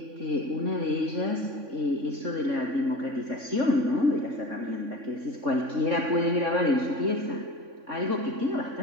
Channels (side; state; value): left; late; 3.6 ms